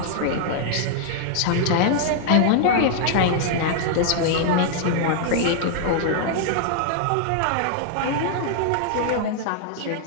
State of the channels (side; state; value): both; different; correlation 0.00